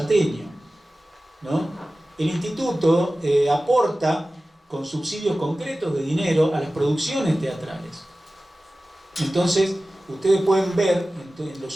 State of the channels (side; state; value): both; normal; correlation 0.96